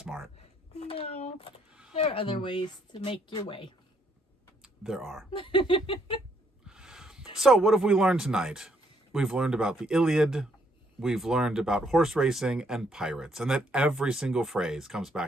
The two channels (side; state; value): both; normal; correlation 0.70